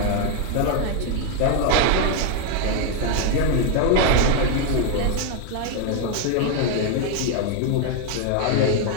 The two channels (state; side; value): different; both; correlation 0.01